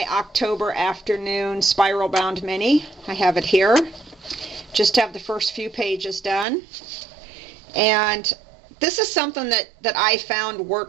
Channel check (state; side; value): drops out; left; at 6.5 s